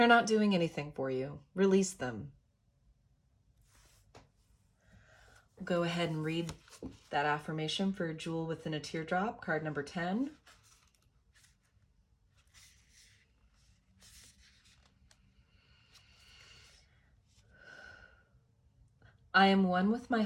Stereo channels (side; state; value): both; identical; correlation 1.00